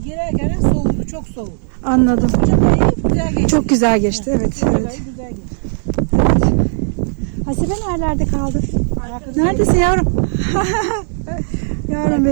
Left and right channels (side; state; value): left; silent; 69 dB below the other